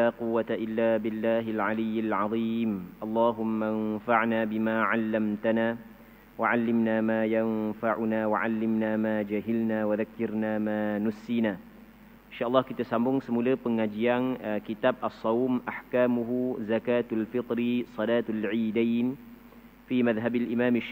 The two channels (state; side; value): identical; both; correlation 1.00